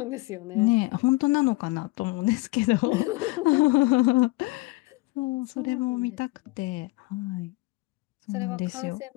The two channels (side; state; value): right; quieter; 22.3 dB